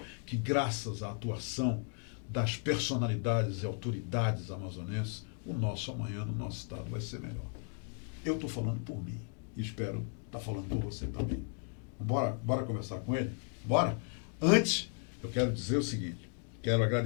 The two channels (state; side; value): quieter; right; 38.9 dB